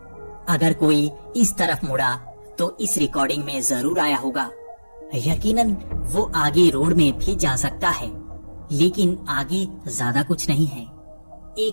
अगर कोई इस तरफ मुड़ा तो इस रिकॉर्डिंग में जरूर आया होगा। यकीनन वो आगे रोड में भी जा सकता है, लेकिन आगे ज्यादा कुछ नहीं है।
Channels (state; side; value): inverted; both; correlation -1.00